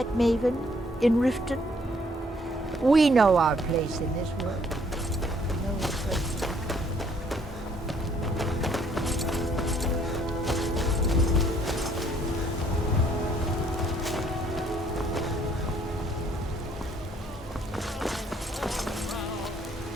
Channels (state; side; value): normal; both; correlation 0.64